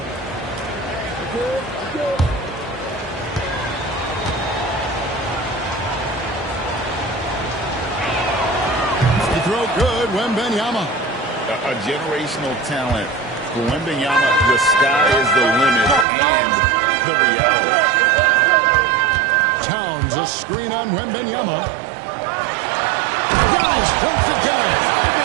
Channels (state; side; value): drops out; left; at 16.1 s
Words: Free throw good, Wembanyama. A generational talent. For Wembanyama, the sky is the limit and the reality. Towns, a screen on Wembanyama. Giannis dumps it down.